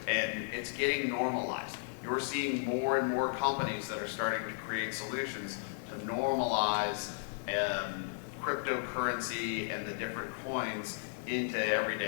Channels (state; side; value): silent; right; digital silence